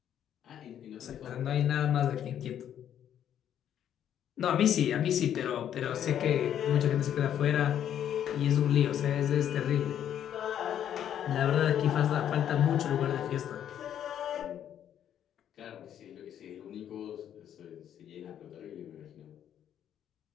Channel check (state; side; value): quieter; right; 10.0 dB